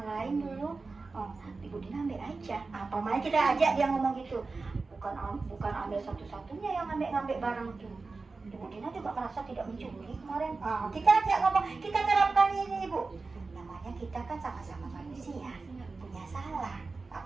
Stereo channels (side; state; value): left; quieter; 3.9 dB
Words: lain dulu. Ibu Dina ambil aja. Apa makanya kita ajak dia ngomong gitu. Bukan ambil satu-satunya yang ngambil barang itu. Ibu Dina juga merasa tidak mencuri kemarin. Kita ajak ngomong, kita terapkan ini Ibu. Namanya kita kan sama-sama manusia, punya salah.